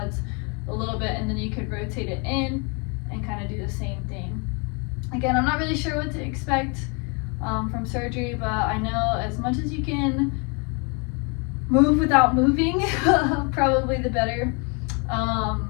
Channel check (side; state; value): right; quieter; 33.6 dB